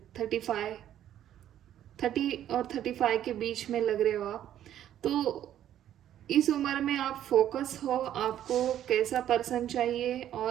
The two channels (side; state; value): left; quieter; 11.2 dB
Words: 35, 30 और 35 के बीच में लग रहे हो आप, तो इस उम्र में आप फोकस हो, आपको कैसा पर्सन चाहिए,